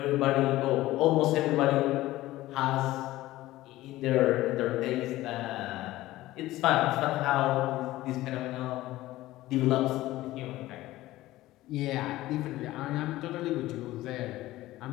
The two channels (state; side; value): quieter; right; 16.7 dB